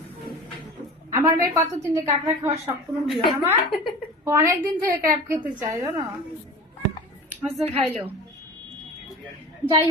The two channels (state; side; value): normal; both; correlation 0.35